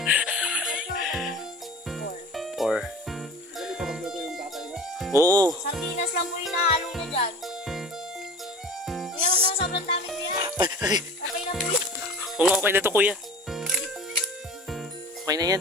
4. Oo. Sardinas lang po yung nahalo niya dyan. Kuya, huwag na sobrang dami kuya. Okay na po yun. Oo nga, okay na to kuya. Okay na yan.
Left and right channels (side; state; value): both; normal; correlation 0.39